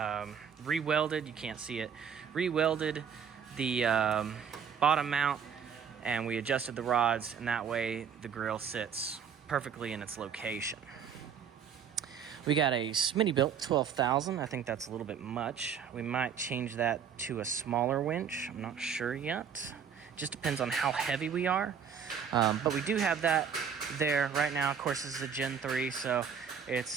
re-welded, you can't see it, re-welded the bottom mount, and we adjusted the rods, and that way the grill sits perfectly in its location. We got a Smittybilt 12,000. I think that's a little bit much. We might change that to a smaller winch. I'm not sure yet. Just depends on how heavy we are. But we do have that there right now. Of course, this is a Gen 3, so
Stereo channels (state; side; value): quieter; left; 7.3 dB